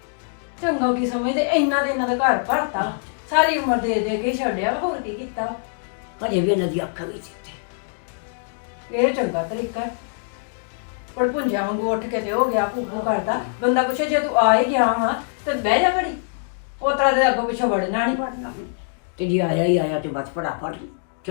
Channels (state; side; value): silent; right; digital silence